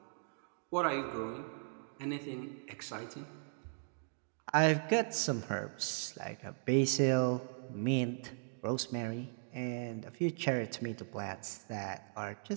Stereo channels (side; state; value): left; silent; digital silence